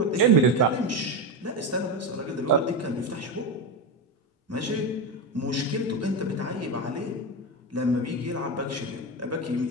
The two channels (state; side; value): normal; both; correlation 0.14